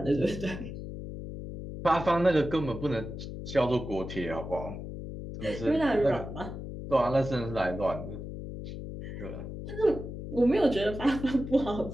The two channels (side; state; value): left; noise; hum, 8 dB below the sound